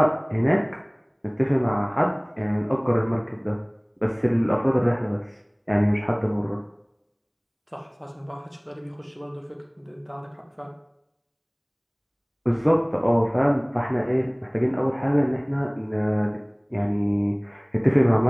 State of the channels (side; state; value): both; identical; correlation 1.00